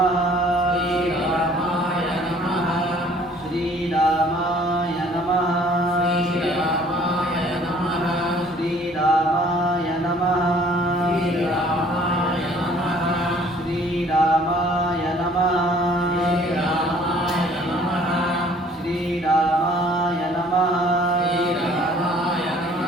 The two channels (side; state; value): both; normal; correlation 0.56